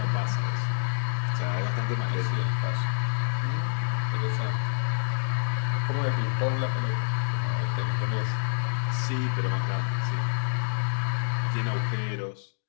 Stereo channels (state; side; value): silent; right; digital silence